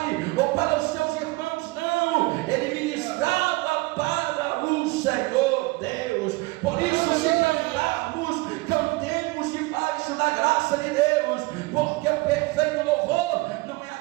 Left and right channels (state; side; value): quieter; left; 23.1 dB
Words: ou para os seus irmãos, não, ele ministrava para o Senhor Deus. Por isso, se cantarmos, cantemos debaixo da graça de Deus, porque o perfeito louvor não é